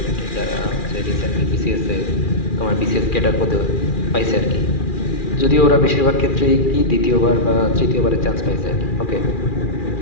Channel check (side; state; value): right; late; 2.4 ms